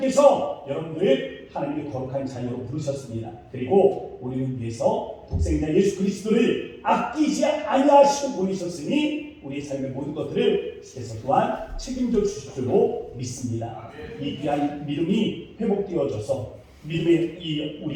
여러분들을 하나님의 거룩한 자녀로 부르셨습니다. 그리고 우리를 위해서 독생자 예수 그리스도를 아끼지 아니하시고 보내셨으니 우리의 삶의 모든 것들을 주께서 또한 책임져 주실 줄로 믿습니다. 이 귀한 믿음이 회복되어져서 믿음의 이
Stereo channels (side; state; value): both; identical; correlation 1.00